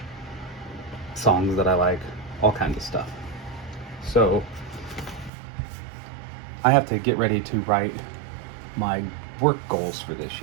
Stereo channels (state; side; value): drops out; left; at 5.3 s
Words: songs that I like, all kinds of stuff. So I have to get ready to write my work goals for this